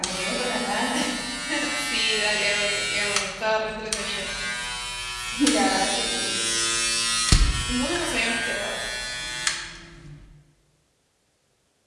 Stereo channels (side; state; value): both; identical; correlation 1.00